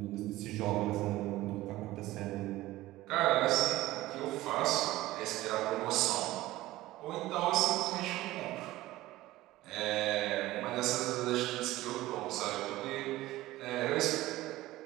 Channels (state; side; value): quieter; left; 17.0 dB